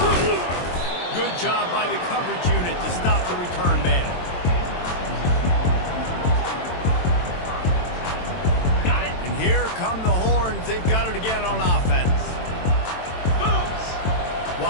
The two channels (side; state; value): right; late; 23 ms